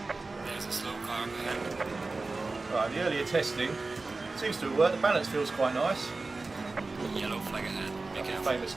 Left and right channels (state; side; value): quieter; left; 3.6 dB